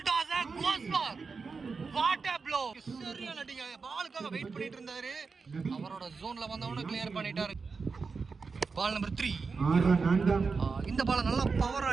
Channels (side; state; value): left; quieter; 4.8 dB